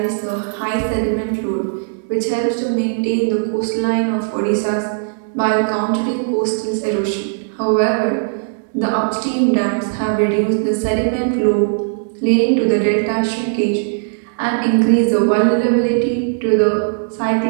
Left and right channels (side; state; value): left; silent; digital silence